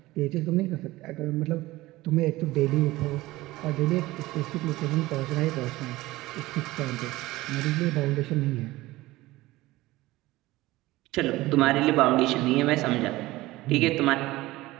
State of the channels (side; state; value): left; quieter; 18.5 dB